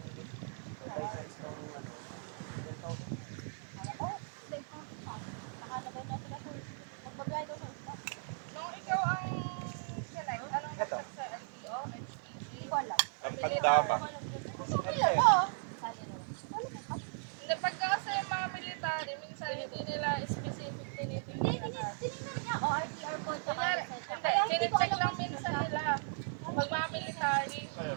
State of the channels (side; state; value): left; silent; digital silence